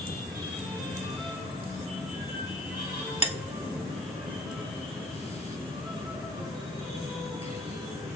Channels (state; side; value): normal; both; correlation 0.52